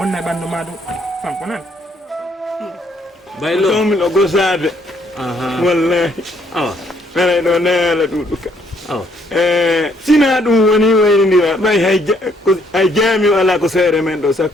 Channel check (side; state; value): both; normal; correlation 0.69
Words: e ɓandu ma ɗum fanko nan baylo tomi ɗo gosade wallahi aray ɗo neela ɗuɗuka sina ɗum woni waynidira ɓay hay jaami o ala ko seere men ɗo